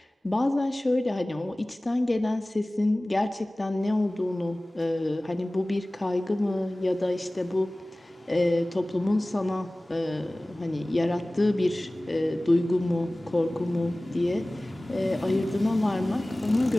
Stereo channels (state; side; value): normal; both; correlation 0.98